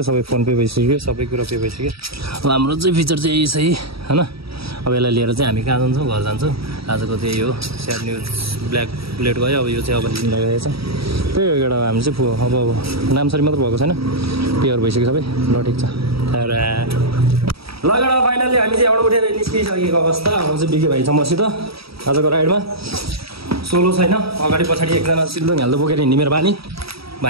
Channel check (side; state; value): left; late; 0.76 ms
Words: सबै फोन पे भइसक्यो सबै कुरा पे भइसक्यो अब हाम्रो चाहिँ फिचर चाहिँ यही छ हैन अब यसलाई लिएर चाहिँ हामी कहाँ जान्छौँ घर जान्छौँ आजको त्यही हो स्याड न्युज ब्ल्याक बुलेट गयो अब यो चाहिँ अब लगाएको छ त्यही हो एउटा हामी चाहिँ अब नामसरी मात्र भएको छैन प्योर भइसक्यो सबै ल ठिक छ लगेर फाइनल्ली हामी चाहिँ एउटा उठेर निस्किसकेको अवस्था अब चाहिँ बिके भाइ छ मसित आजको राइडमा सोलो छैन अगाडि पछाडि एकजना सिल्दो हाल्दो बोकेर हिँड्ने मेरो बानी